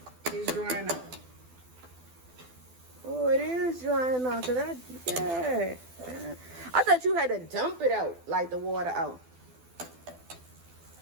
it's drying out. Oh, it is drying out. Yeah. I thought you had to dump it out, like the water out.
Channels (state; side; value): late; left; 12 ms